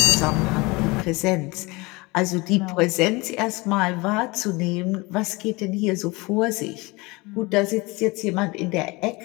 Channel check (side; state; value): right; quieter; 24.4 dB